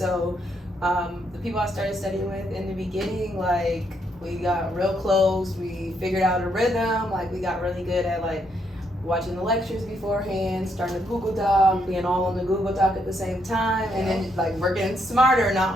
the people I started studying with in the beginning, like, we got real close. We figured out a rhythm. Like, we got really good at, like, watching the lectures beforehand, starting the Google Doc, being all on the Google Doc at the same time, and then like working smarter, not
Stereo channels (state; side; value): normal; both; correlation 0.75